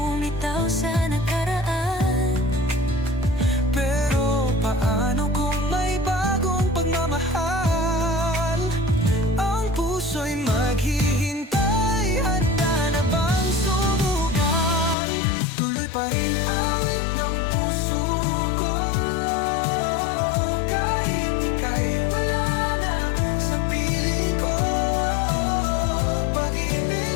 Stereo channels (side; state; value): right; drops out; at 15.0 s